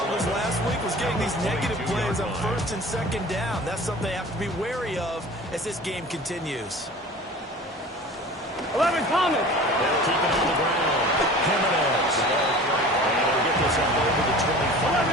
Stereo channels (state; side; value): normal; both; correlation 0.41